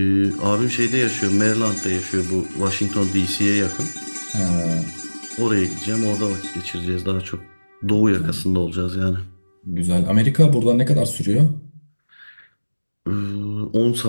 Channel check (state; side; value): inverted; both; correlation -1.00